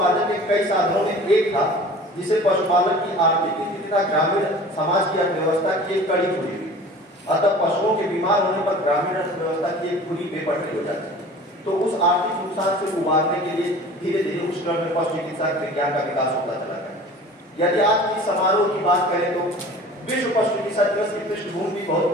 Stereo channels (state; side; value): normal; both; correlation 0.42